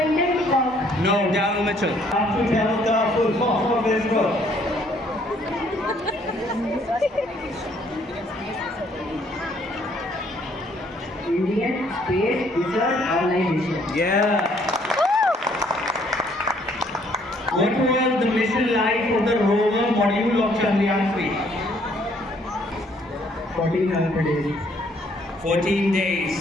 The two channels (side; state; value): both; normal; correlation 0.65